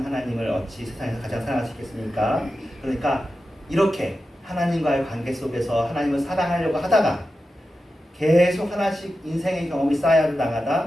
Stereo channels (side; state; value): both; normal; correlation 0.92